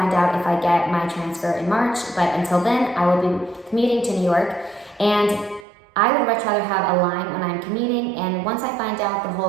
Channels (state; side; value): drops out; left; at 5.7 s